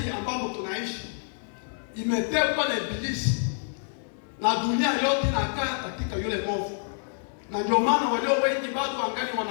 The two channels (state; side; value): silent; right; 60 dB below the other